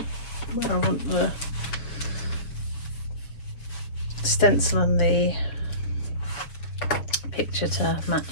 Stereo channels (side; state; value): right; late; 7.2 ms